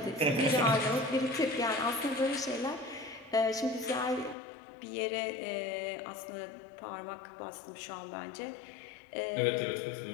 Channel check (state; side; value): drops out; right; at 4.4 s